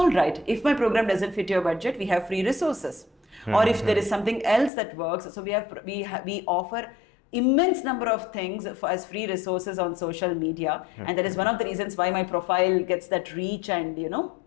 right, if my program doesn't fit your budget, we have free resources. Or if there is something else that works, so we offer immense number of things as free resources on social media, and that is one of the reasons why my profile gets that reach and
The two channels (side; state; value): right; drops out; at 4.7 s